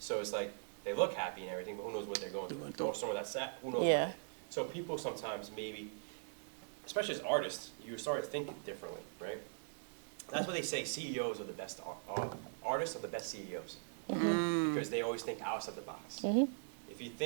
it's like they look happy and everything, but who knows what they're going through? Or someone that's sad, who knows? Yeah. So people sometimes maybe, especially as artists, you start thinking differently, right? That's what they say. CEOs are the best artists are the best CEOs because they always think outside the box. If you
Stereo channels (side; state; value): left; silent; 51 dB below the other